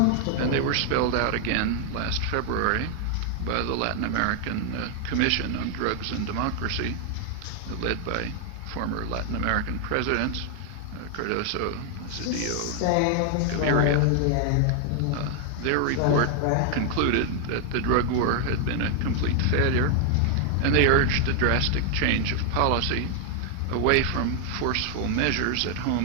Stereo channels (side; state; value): both; different; correlation 0.00